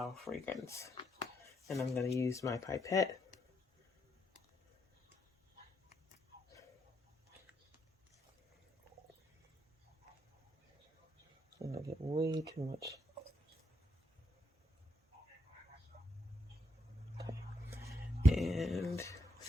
fragrance. And I'm going to use my pipette. I'm going to get way too much. Okay. And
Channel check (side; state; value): both; normal; correlation 0.78